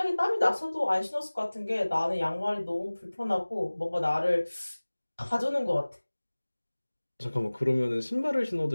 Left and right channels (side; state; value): both; inverted; correlation -1.00